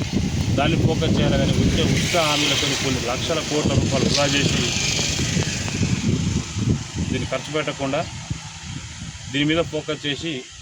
దాన్ని ఫోకస్ చేయాలి. కానీ ఉచిత హామీలతో కొన్ని లక్షల కోట్ల రూపాయలు వృధా చేసి దీన్ని ఖర్చు పెట్టకుండా దీని మీద ఫోకస్ చేసి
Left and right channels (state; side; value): identical; both; correlation 1.00